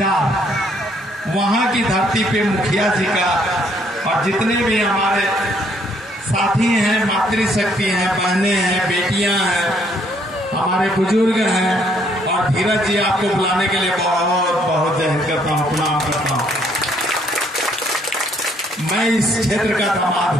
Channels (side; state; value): both; normal; correlation 0.67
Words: वहां की धरती पे मुखिया जी का और जितने भी हमारे साथी हैं, मातृशक्ति हैं, बहनें हैं, बेटियां हैं, हमारे बुजुर्ग हैं और धीरज जी आपको बुलाने के लिए बहुत बहुत जय हिंद करता हूँ, प्रणाम करता हूँ। मैं इस क्षेत्र का दामाद